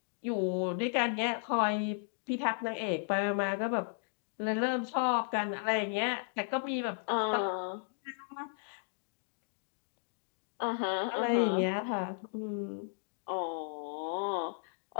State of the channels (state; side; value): silent; right; digital silence